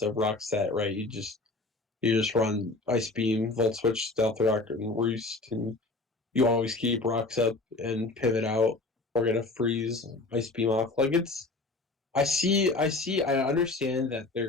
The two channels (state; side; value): quieter; right; 3.2 dB